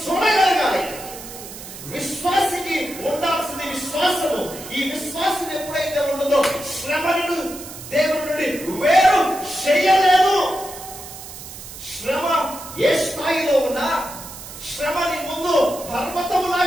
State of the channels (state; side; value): noise; right; hiss, 13 dB below the sound